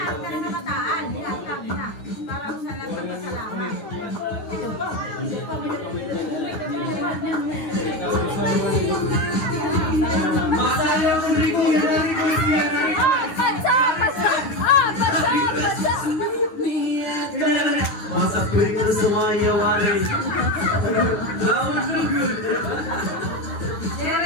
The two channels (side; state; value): right; late; 9.6 ms